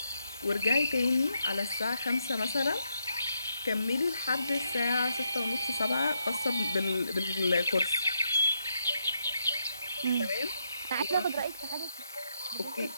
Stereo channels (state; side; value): inverted; both; correlation -0.79